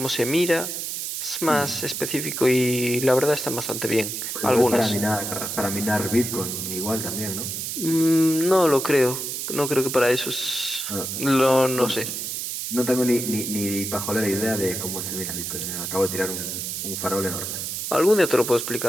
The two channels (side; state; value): right; noise; hiss, 4 dB below the sound